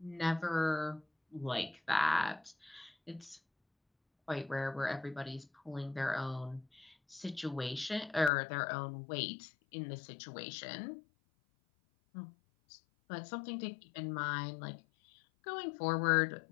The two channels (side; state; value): right; drops out; at 8.3 s